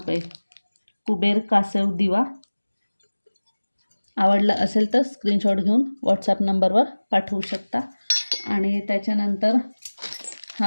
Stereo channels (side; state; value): both; inverted; correlation -1.00